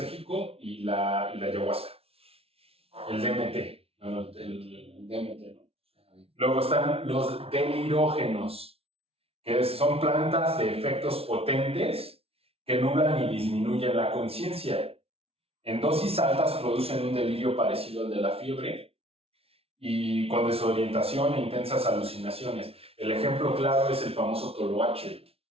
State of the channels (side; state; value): left; late; 0.28 ms